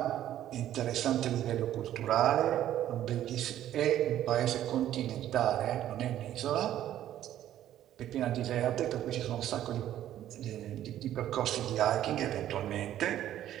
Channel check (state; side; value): quieter; left; 12.1 dB